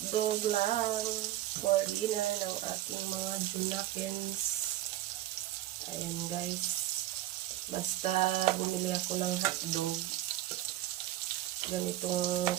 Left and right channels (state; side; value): quieter; left; 14.9 dB